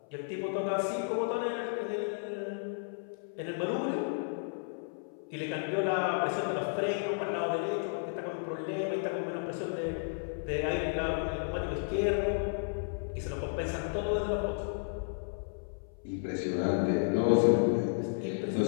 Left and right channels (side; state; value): right; silent; 56 dB below the other